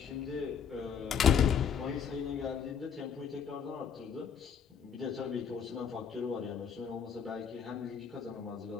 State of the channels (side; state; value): right; quieter; 7.1 dB